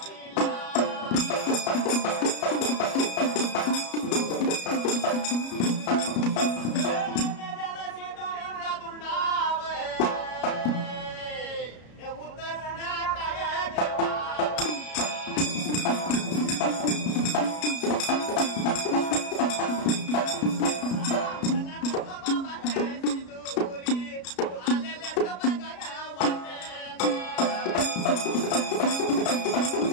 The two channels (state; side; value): late; right; 33 ms